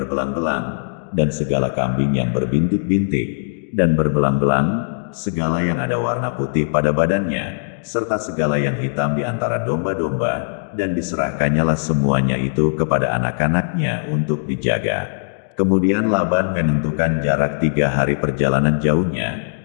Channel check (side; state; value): right; silent; digital silence